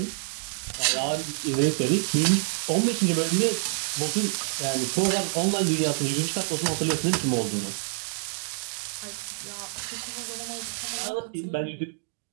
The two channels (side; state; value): left; silent; digital silence